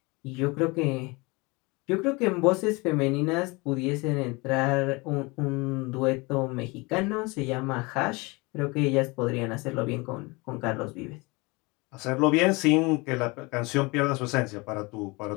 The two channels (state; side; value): quieter; right; 25.9 dB